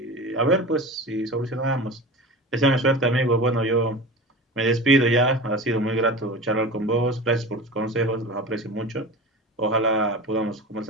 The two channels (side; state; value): both; normal; correlation 0.32